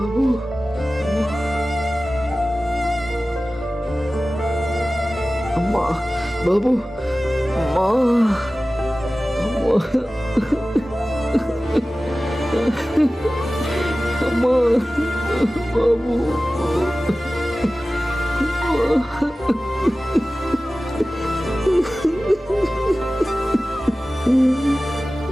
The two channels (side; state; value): both; normal; correlation 0.96